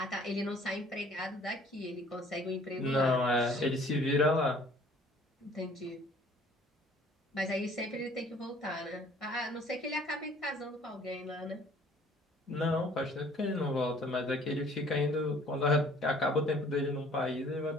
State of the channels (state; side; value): normal; both; correlation 0.55